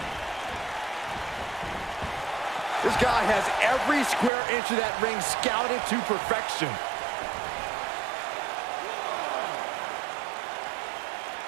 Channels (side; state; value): left; drops out; at 4.3 s